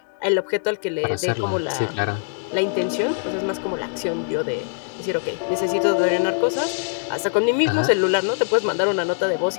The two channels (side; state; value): right; silent; digital silence